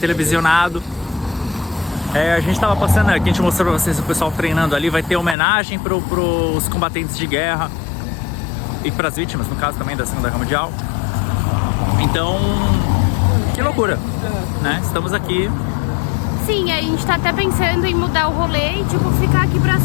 A gente tava passando aqui, a gente mostrou pra vocês o pessoal treinando ali. Vai ter homenagem pros combatentes de guerra e pras vítimas, no caso também da Segunda Guerra Mundial. Então, que loucura, né? Estamos aqui. Sim, a gente tá até pensando em mudar o rolê e tipo, ficar aqui pra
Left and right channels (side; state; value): right; drops out; at 5.4 s